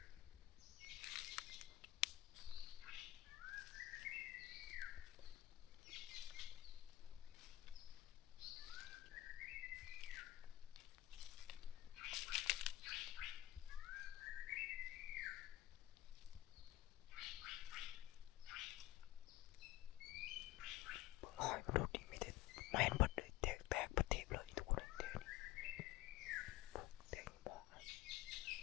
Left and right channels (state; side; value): quieter; right; 15.4 dB